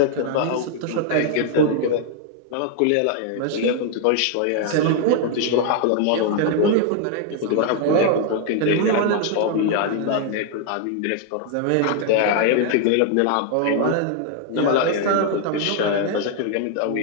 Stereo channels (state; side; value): different; both; correlation 0.00